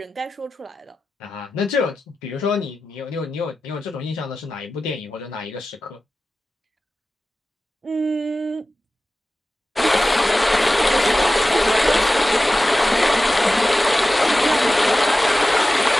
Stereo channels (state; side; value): normal; both; correlation 0.94